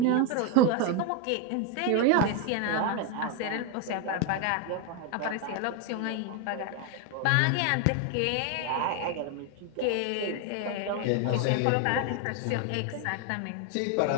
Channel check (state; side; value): different; both; correlation 0.01